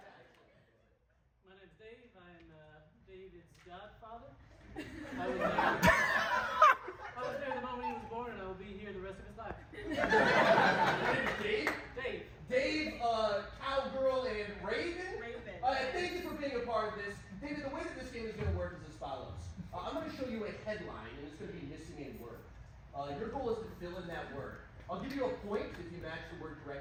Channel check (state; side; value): identical; both; correlation 1.00